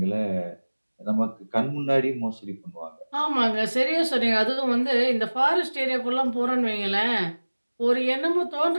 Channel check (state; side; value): inverted; both; correlation -1.00